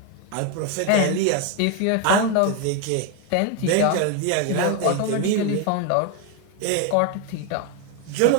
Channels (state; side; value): different; both; correlation 0.01